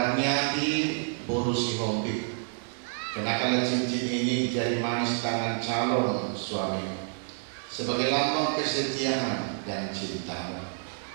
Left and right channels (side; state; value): left; silent; digital silence